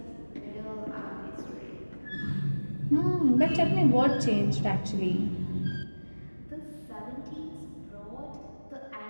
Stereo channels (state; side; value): inverted; both; correlation -1.00